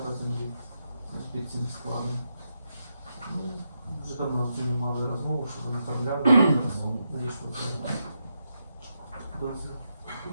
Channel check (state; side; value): inverted; both; correlation -0.84